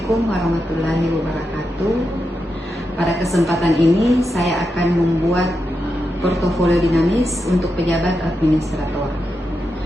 warahmatullahi wabarakatuh. Pada kesempatan ini saya akan membuat portofolio dinamis untuk pejabat administrator.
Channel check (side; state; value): both; normal; correlation 0.87